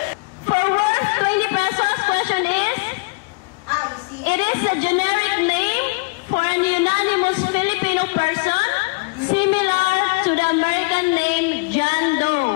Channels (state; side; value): quieter; right; 30.2 dB